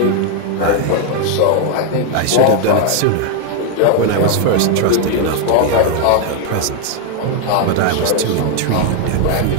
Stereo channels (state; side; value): different; both; correlation 0.00